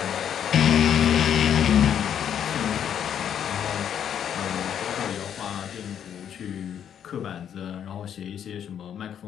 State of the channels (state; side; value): quieter; right; 9.1 dB